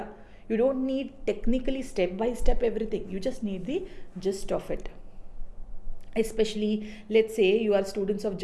You don't need technically step by step everything. You just need the gist of it. Especially, let's say you are students of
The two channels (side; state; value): both; identical; correlation 1.00